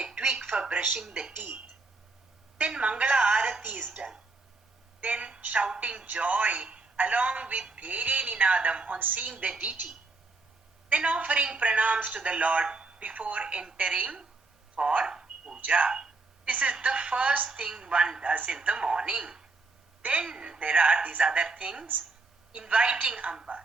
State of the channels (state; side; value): quieter; left; 3.7 dB